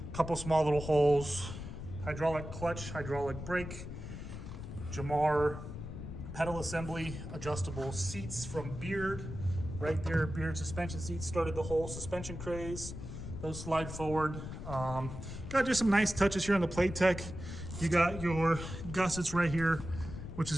couple small little holes. Hydraulic clutch, hydraulic brake, Jamar pedal assembly, adjustable seats from Beard. Right there, Beard suspension seats started the whole suspension craze. Those slide forward. Got just some nice touches here on the playtech. You got your gussets right here, which is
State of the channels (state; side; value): noise; left; rumble, 9 dB below the sound